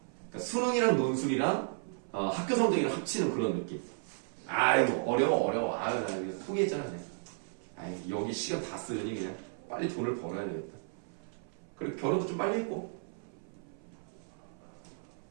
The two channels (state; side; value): silent; left; 55 dB below the other